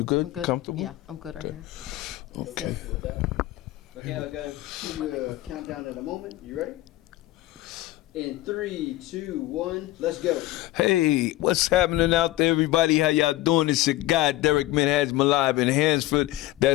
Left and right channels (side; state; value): right; quieter; 16.7 dB